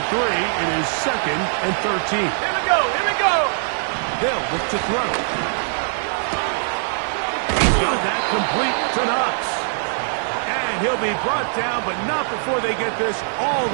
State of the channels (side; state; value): left; silent; 61 dB below the other